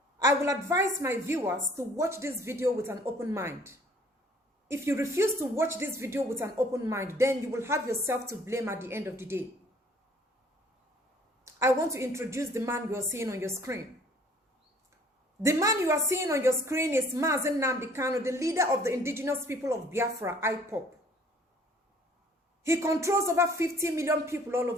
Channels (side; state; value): both; normal; correlation 0.56